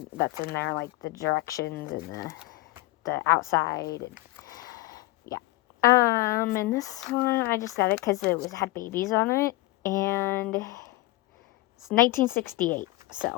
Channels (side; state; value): right; quieter; 20.0 dB